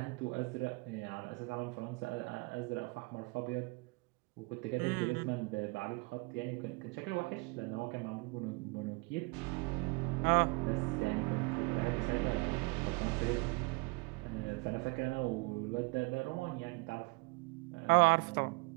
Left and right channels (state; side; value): quieter; left; 29.0 dB